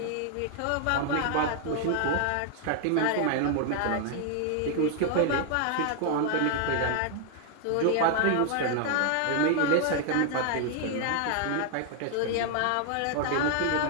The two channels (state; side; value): different; both; correlation 0.00